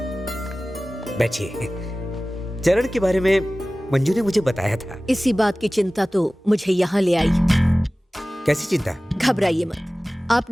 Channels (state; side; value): normal; both; correlation 0.97